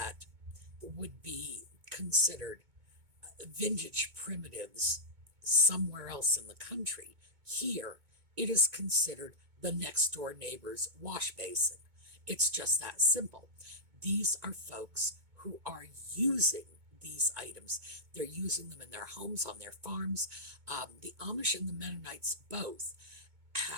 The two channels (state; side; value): late; left; 2.2 ms